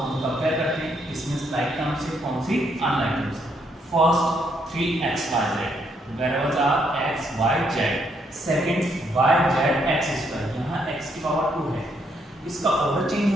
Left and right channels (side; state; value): both; normal; correlation 0.74